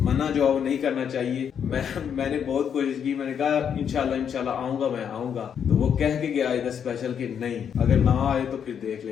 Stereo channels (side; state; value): right; quieter; 8.0 dB